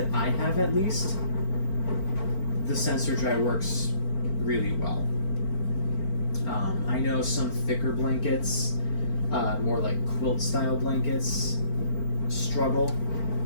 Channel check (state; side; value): late; right; 4.4 ms